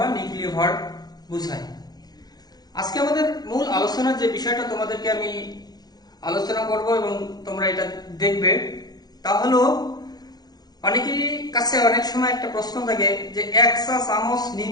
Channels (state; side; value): late; right; 0.19 ms